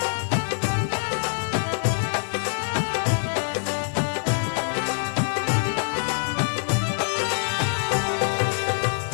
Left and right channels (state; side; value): silent; right; 61 dB below the other